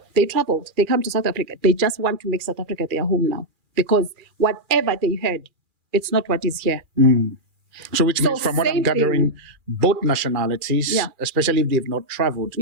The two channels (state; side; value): late; left; 2.4 ms